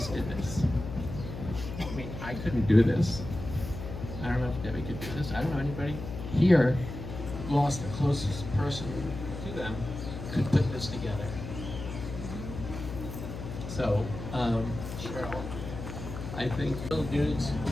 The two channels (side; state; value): left; noise; hum, 8 dB below the sound